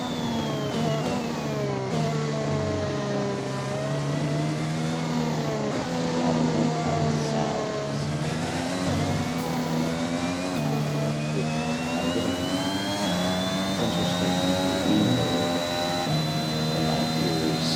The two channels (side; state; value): both; identical; correlation 1.00